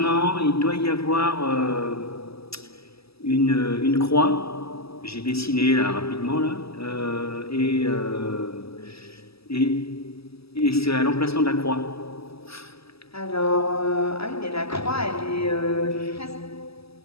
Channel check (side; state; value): right; late; 0.77 ms